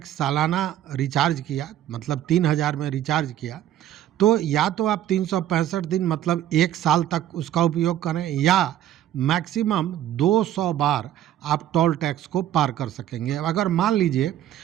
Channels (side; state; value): left; quieter; 12.0 dB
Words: सालाना रिचार्ज किया, मतलब 3,000 में रिचार्ज किया, तो या तो आप 365 दिन मतलब 1 साल तक उसका उपयोग करें, या मैक्सिमम 200 बार आप टोल टैक्स को पार कर सकेंगे। अगर मान लीजिए